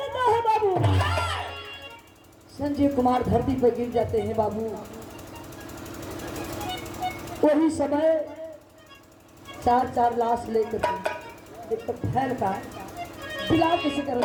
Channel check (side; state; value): both; identical; correlation 1.00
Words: है बाबू। संजय कुमार धरती पर गिर जाते हैं बाबू। वही समय चार लाश लेकर एक तो फैल का बिला किसी कर